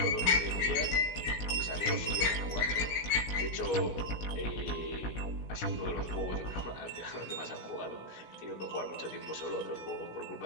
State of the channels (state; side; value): late; right; 16 ms